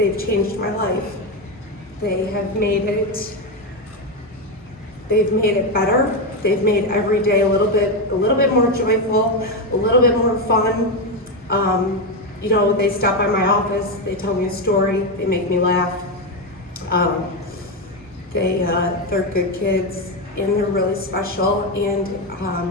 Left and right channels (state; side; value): normal; both; correlation 0.10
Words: changed my life. They have made it. They've made it better. They've made every day a little bit more joyful, a little bit more fun. You know, they stop by my office, they tell me a story, they make me laugh. They're good kids, and they're really special, and